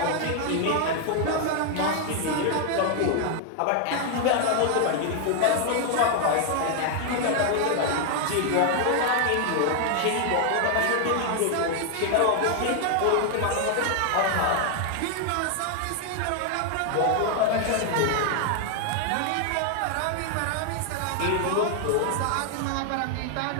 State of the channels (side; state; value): both; different; correlation 0.00